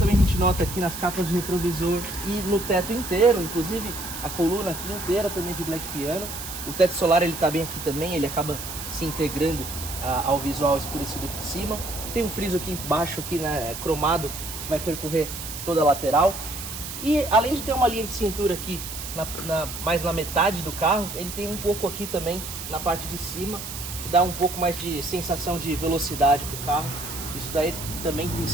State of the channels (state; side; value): noise; right; hiss, 8 dB below the sound